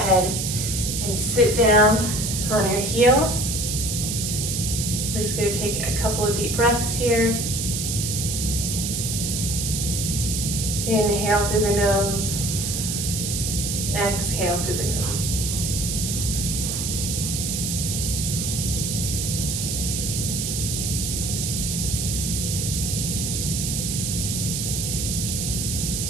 and sit down on your heels. We're just going to take a couple of deep breaths here. Inhale through the nose. Exhale through the nose.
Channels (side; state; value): right; noise; hiss, 2 dB below the sound